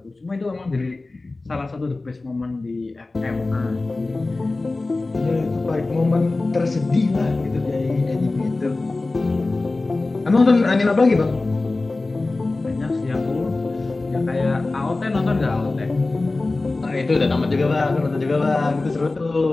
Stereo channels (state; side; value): quieter; right; 3.3 dB